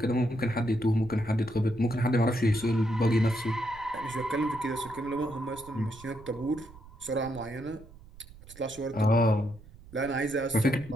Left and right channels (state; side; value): noise; right; rumble, 20 dB below the sound